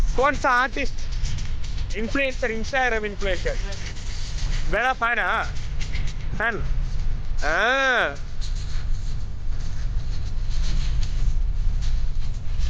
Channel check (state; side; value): identical; both; correlation 1.00